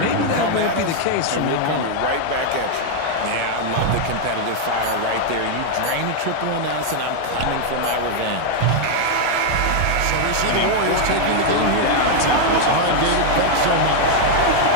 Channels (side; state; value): both; different; correlation 0.00